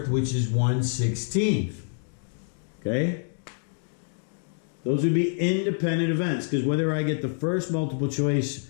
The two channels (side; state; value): right; silent; digital silence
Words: which is 1/16. Okay? Those would be independent events, because whether I get the first multiple